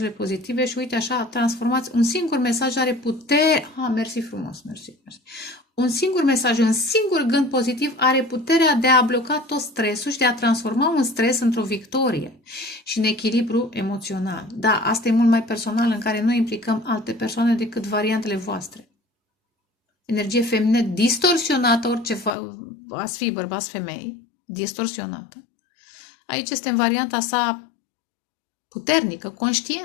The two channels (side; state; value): right; drops out; at 22.3 s